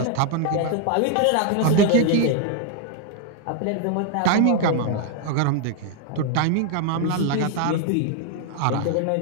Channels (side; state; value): both; different; correlation 0.00